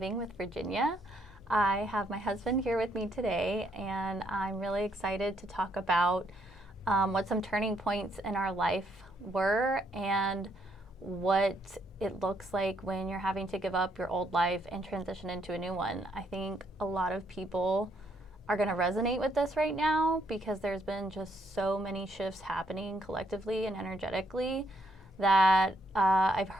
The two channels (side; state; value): both; normal; correlation 0.72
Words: with Virginia. I have my husband here with me today, and I'm really excited to talk about what some turning points in our life were and what it looks like when you're having to give up your old life and transition into a new one. I think a lot of people are going to resonate with this right now because there's been just so many shifts happening collectively and energetically that I've